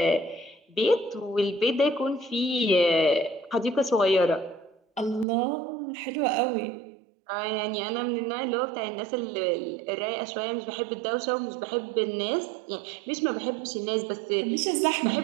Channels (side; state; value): left; drops out; at 5.2 s